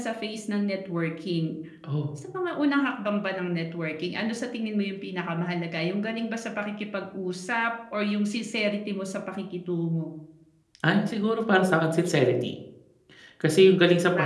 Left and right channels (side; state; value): both; identical; correlation 1.00